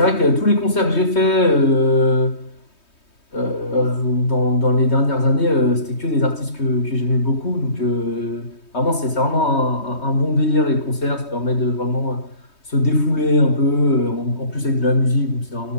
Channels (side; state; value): right; late; 3.2 ms